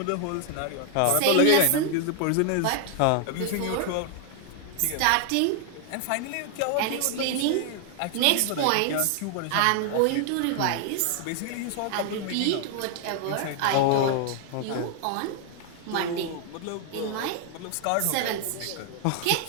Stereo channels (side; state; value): both; different; correlation 0.00